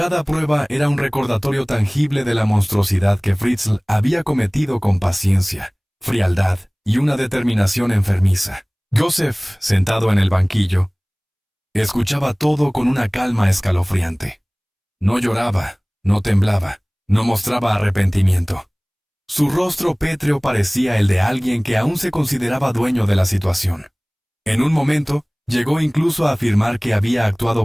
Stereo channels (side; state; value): both; identical; correlation 1.00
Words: prueba era un recordatorio tangible de la monstruosidad que Fritzl había cometido con paciencia, frialdad y una determinación enfermiza. Joseph, sentado en el banquillo, escuchaba todo con una calma escalofriante. No lloraba, no temblaba, no mostraba arrepentimiento. Su rostro pétreo parecía el de alguien que aún se consideraba dueño de la situación. En un momento, llegó incluso a afirmar que había